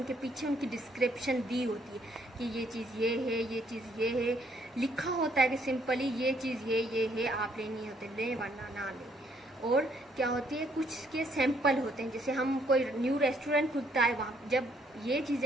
पीछे उनकी डिस्क्रिप्शन दी होती है कि ये चीज़ ये है, ये चीज़ ये है, लिखा होता है कि सिंपली ये चीज़ ये है, आप लेनी होती है लें वरना ना लें। और क्या होती है, कुछ के सैंपल होते हैं, जैसे हम कोई न्यू रेस्टोरेंट खुलता है, वहाँ जब ये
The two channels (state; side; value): normal; both; correlation 0.68